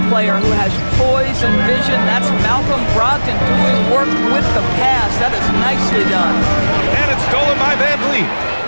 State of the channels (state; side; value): inverted; both; correlation -1.00